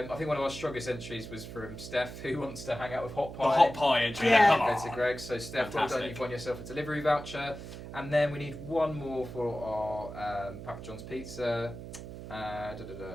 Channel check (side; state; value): right; noise; hum, 11 dB below the sound